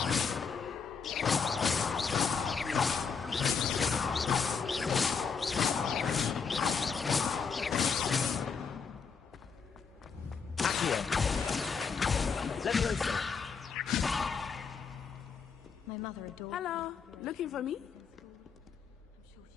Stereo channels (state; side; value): quieter; right; 5.7 dB